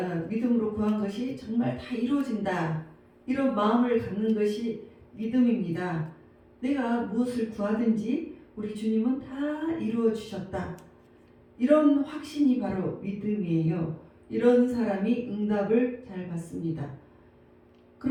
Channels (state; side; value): identical; both; correlation 1.00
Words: 믿음으로 구한 것이 정말 다 이루어진다, 이런 마음을 갖는 것이 믿음입니다. 내가 무엇을 구하든지 우리 주님은 다 이루어 주셨다, 이런 확신이 바로 믿음이에요. 이런 사람이 응답을 잘 받습니다.